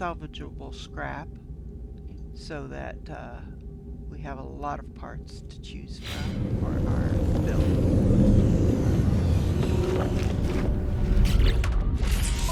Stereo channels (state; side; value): identical; both; correlation 1.00